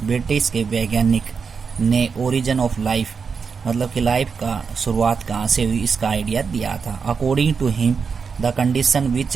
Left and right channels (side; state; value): left; quieter; 5.6 dB